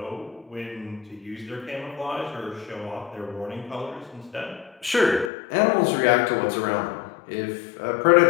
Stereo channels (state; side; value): drops out; right; at 5.3 s